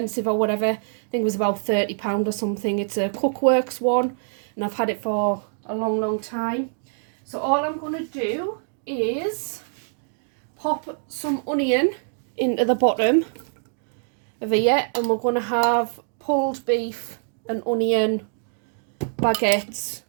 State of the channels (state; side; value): silent; left; digital silence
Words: or whatever. I think it was about £30 or something. It's a Cookworks one, and I've had it for a long time. So all I'm going to do is pop some onion into the bottom of here, and we're going to have pulled beef and onion baguettes